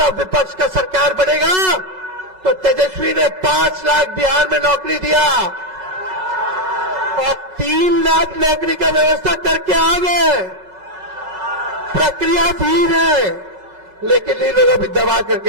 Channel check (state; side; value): late; left; 5.4 ms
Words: विपक्ष का सरकार बनेगा तो तेजस्वी ने 5 लाख बिहार में नौकरी दिया और 3 लाख नौकरी का व्यवस्था करके आ गए। प्रक्रिया धीर है लेकिन इन लोगों भी दबा